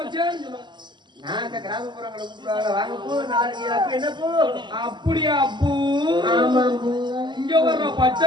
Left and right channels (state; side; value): late; left; 0.22 ms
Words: சொல்லுவேன். நான் அந்த கிராமப்புறங்களை கூப்பிடுவாங்க வாங்க பூ நாளைக்கு அப்ப என்ன பூ? அப்படியா பூ? ஆமா பூ. இங்க வர்ற